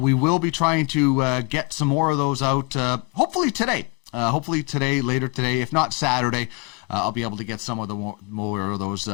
will be trying to get some more of those out, hopefully today. Later today, if not Saturday, I'll be able to get some of the more of those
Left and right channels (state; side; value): quieter; right; 27.8 dB